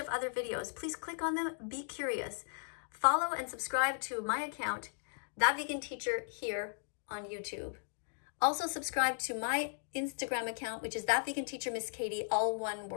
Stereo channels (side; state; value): right; silent; digital silence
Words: other videos. Please click on them. Be curious. Follow and subscribe to my account, That Vegan Teacher, here on YouTube. Also subscribe to my Instagram account, which is That Vegan Teacher Miss Kadie, all one